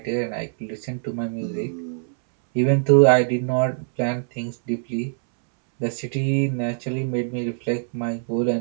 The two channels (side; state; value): left; silent; 63 dB below the other